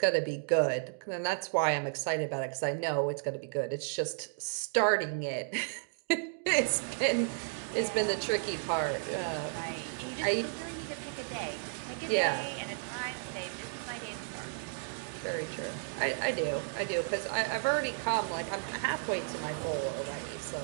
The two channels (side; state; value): left; silent; digital silence